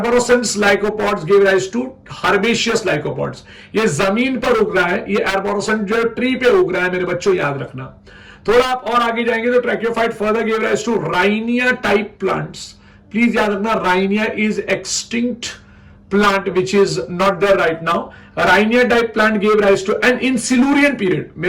lycopods give rise to herbaceous lycopods. ये जमीन पर उग रहा है, ये एर्बोरोसेंट जो ट्री पे उग रहा है मेरे बच्चों, याद रखना। थोड़ा आप और आगे जाएंगे तो tracheophyte further give rise to rhynia type plants. Please याद रखना, rhynia is extinct plant which is not there right now। Rhynia type plant gave rise to, and in Silurian period,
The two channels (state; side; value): identical; both; correlation 1.00